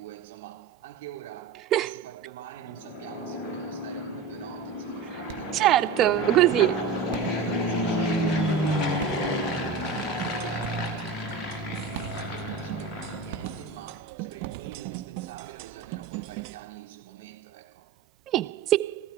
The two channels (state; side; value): quieter; left; 5.2 dB